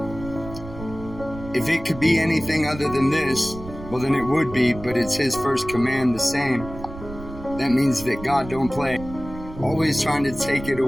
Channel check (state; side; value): noise; right; rumble, 13 dB below the sound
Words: If it could be anything other than this, well then it would be, but it's his first command the same. That means that God don't play. Always trying to take it